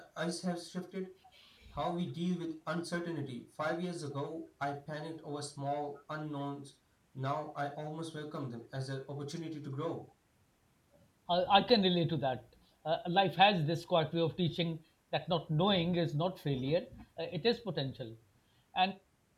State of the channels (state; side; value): identical; both; correlation 1.00